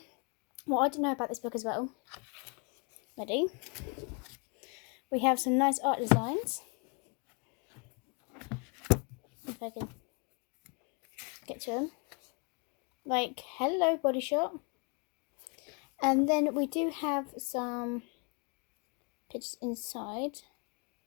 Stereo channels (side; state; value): right; quieter; 33.5 dB